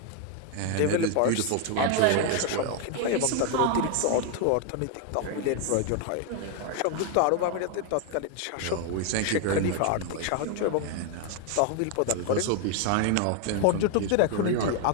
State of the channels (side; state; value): both; different; correlation 0.01